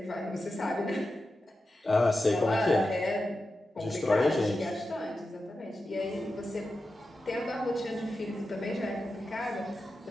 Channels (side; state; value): both; normal; correlation 0.91